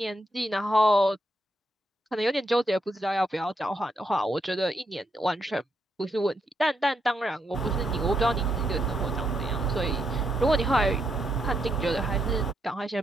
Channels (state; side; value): normal; both; correlation 0.79